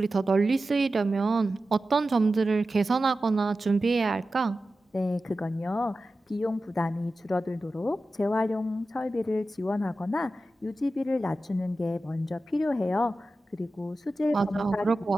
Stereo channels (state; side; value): normal; both; correlation 0.93